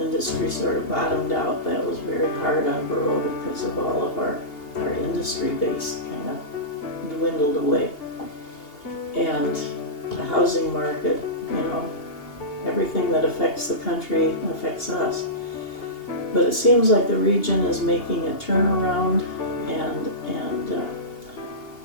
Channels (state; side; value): late; right; 2.8 ms